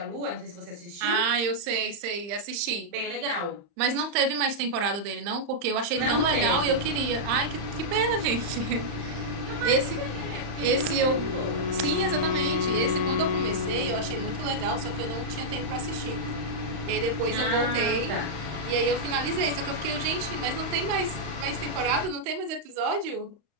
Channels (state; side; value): late; left; 35 ms